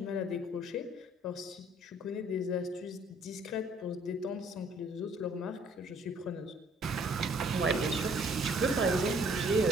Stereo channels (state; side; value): normal; both; correlation 0.60